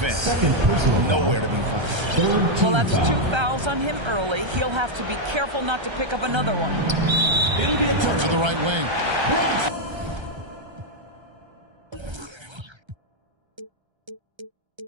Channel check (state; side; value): late; left; 1.3 ms